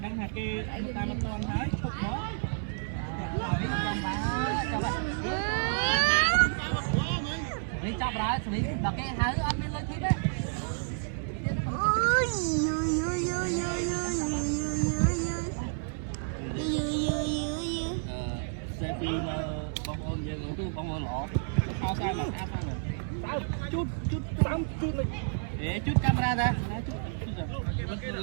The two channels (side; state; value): left; silent; 58 dB below the other